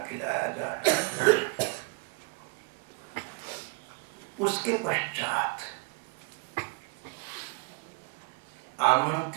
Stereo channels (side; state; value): left; quieter; 30.5 dB